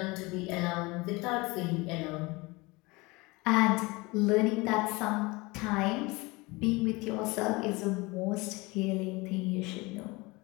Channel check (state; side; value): quieter; right; 24.0 dB